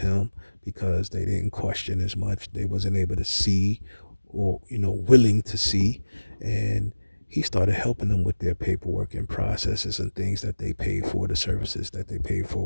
because they didn't question as much. They wasn't able to see or willing to see, and he started helping them with their paperwork and processes and things that they paid for, the services that they paid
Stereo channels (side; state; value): both; inverted; correlation -1.00